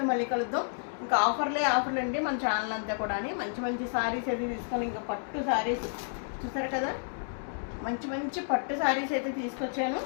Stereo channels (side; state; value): right; silent; digital silence